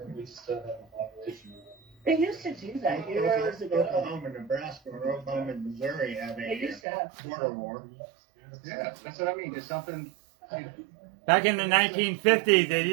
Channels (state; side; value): drops out; left; at 6.8 s